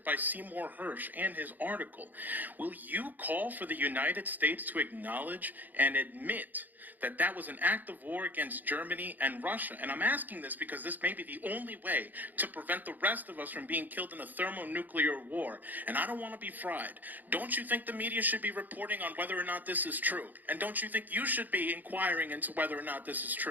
by Seymour Hersh and his article, will you call for the United States to acknowledge and admit that that was an act of war against Germany and Russia? And I'm asking this because this may be the only way to prevent the rest of us from being killed in a thermonuclear war. And I don't want to be fried. Don't you think the media should be reporting on whether or not this is true? And don't you think you should be inquiring into whether or not this is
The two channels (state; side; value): late; left; 0.085 ms